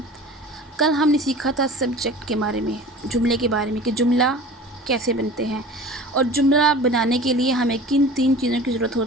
कल हमने सीखा था सब्जेक्ट के बारे में, जुमले के बारे में कि जुमला कैसे बनते हैं और जुमला बनाने के लिए हमें किन 3 चीज़ों की ज़रूरत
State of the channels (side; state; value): both; normal; correlation 0.40